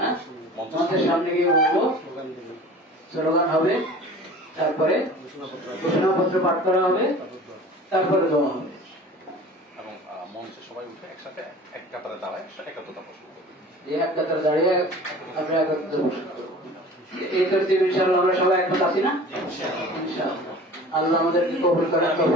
মঞ্চের সামনে গিয়ে বলবো, স্লোগান হবে, তারপরে ঘোষণাপত্র পাঠ করা হবে, তারপরে দেওয়া হবে। এবং মঞ্চে সবাই উঠে একসাথে এক কাতারে দাঁড়ায় একাত্মতা পোষণ করবে। এক কাতারে দাঁড়িয়ে আমরা একাত্মতা পোষণ করবো। এই তরতিব ইনশাআল্লাহ আমরা সবাই একমত আছি না? ইনশাআল্লাহ আল্লাহ আমাদেরকে কবুল করেন,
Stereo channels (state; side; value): normal; both; correlation 0.42